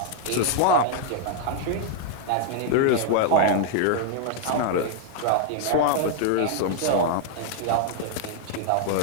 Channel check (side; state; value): both; different; correlation 0.00